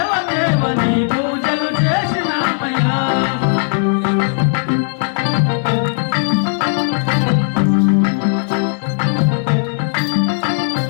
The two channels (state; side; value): silent; right; 69 dB below the other